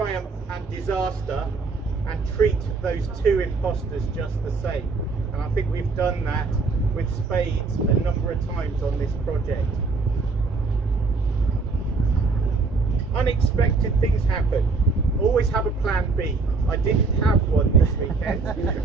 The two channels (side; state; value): left; quieter; 4.1 dB